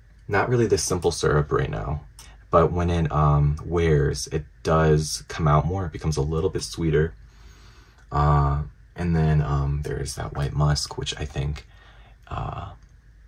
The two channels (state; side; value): identical; both; correlation 1.00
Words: Not really the simple syrup right now, but when it wears, it does come out more. It becomes a little bit sweeter. And then there's that white musk, which I think